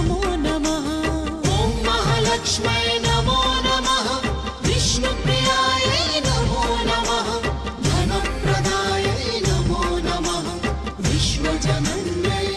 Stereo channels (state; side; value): identical; both; correlation 1.00